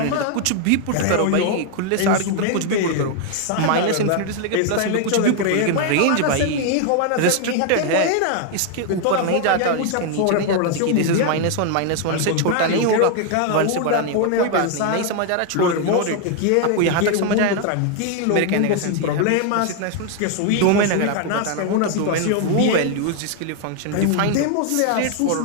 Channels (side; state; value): both; different; correlation 0.00